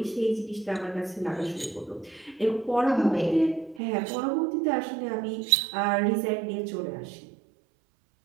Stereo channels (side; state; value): left; drops out; at 3.8 s